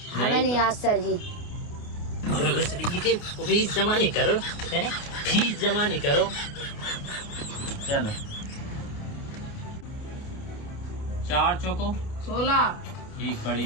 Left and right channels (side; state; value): right; late; 28 ms